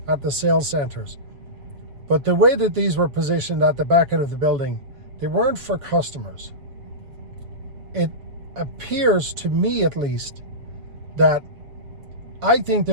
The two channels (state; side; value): late; left; 7.0 ms